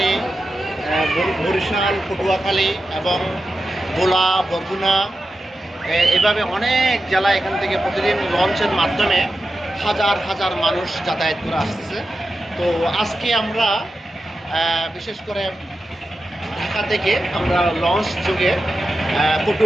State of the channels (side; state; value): both; normal; correlation 0.91